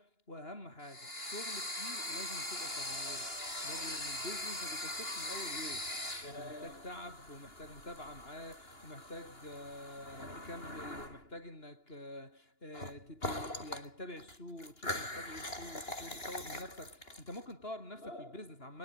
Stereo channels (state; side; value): late; right; 2.9 ms